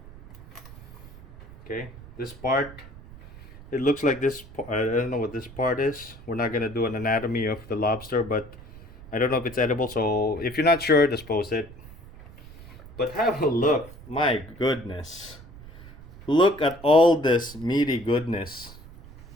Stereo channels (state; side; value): noise; right; rumble, 18 dB below the sound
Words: Okay, this part, it looks like this, I don't know what this part is. We're not gonna do an anatomy of the lobster, but I don't know if it's edible, so if you're not sure, dispose it. But have a look, my goodness. Look at all this meaty goodness.